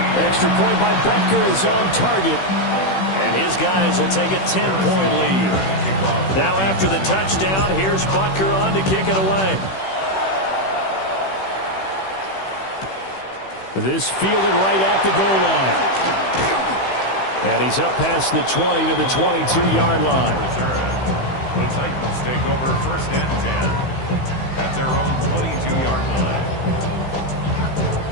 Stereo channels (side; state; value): right; late; 16 ms